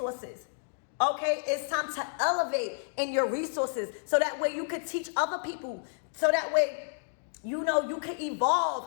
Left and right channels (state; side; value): silent; right; digital silence